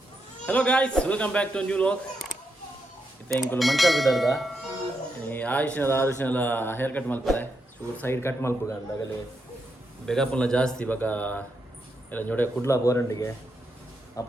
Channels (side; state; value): both; normal; correlation 0.82